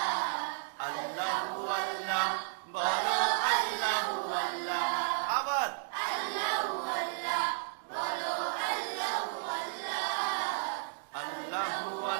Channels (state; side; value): silent; left; digital silence